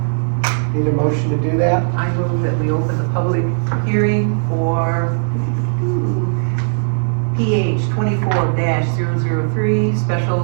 Need a motion to do that? I move that we open the public hearing for PH 24-003,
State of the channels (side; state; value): left; silent; 68 dB below the other